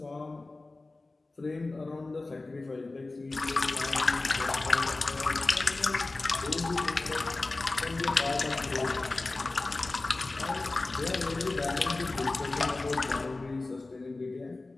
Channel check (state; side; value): quieter; right; 3.2 dB